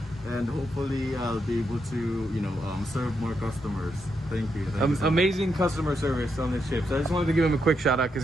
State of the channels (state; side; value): normal; both; correlation 0.81